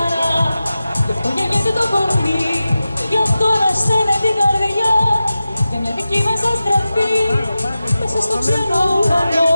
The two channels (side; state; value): both; inverted; correlation -0.94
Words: γι' αυτό γεννιέται το κορμί, γι' αυτό ανασταίνεται την καρδιά, για μια δική μας αστραφή μέσα στο ξένο ουρανό,